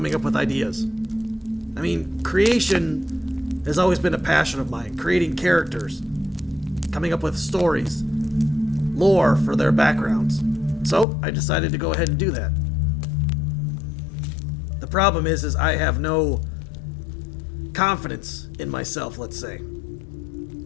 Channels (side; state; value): right; drops out; at 11.1 s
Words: up with ideas. I mean, creation has always been a passion of mine. Creating characters, coming up with stories, lore for their backgrounds. So I decided to go ahead and do that. The problem is I have no confidence in myself, let's say.